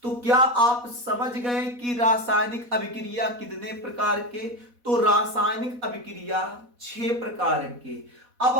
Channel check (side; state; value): left; late; 4.1 ms